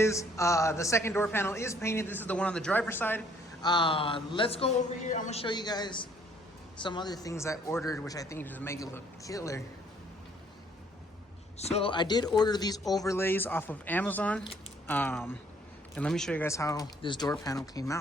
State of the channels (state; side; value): normal; both; correlation 0.62